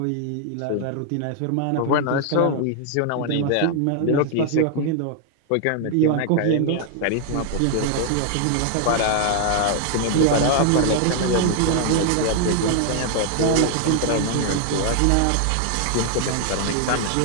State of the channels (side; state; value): both; different; correlation 0.00